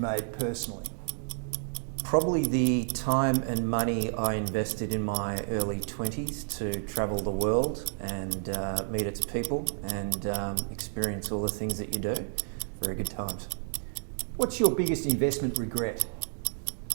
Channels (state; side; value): silent; left; digital silence